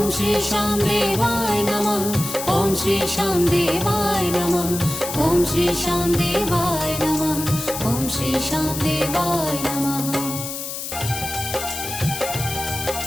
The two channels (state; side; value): noise; left; hiss, 6 dB below the sound